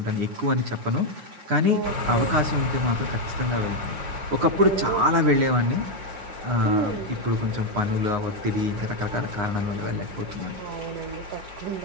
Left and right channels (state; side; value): late; left; 9.6 ms